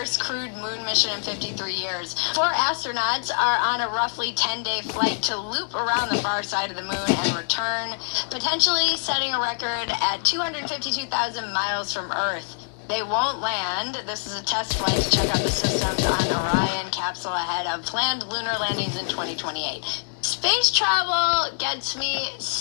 crewed moon mission in 53 years. 4 astronauts are on a roughly 10-day flight to loop around the far side of the moon and return, potentially setting a record at 252,000 miles from Earth. They won't land. This is a test flight to check out the systems on Orion capsule ahead of planned lunar landings in 2028. Space travel gets me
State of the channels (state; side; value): silent; right; 62 dB below the other